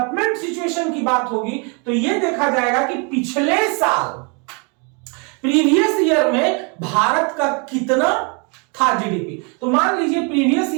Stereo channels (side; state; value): left; quieter; 34.4 dB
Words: सिचुएशन की बात होगी तो ये देखा जाएगा कि पिछले साल प्रीवियस ईयर में भारत का कितना था जीडीपी। तो मान लीजिए प्रीवियस